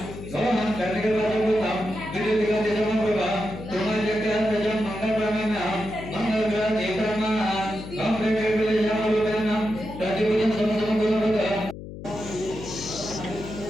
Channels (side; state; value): left; noise; hum, 12 dB below the sound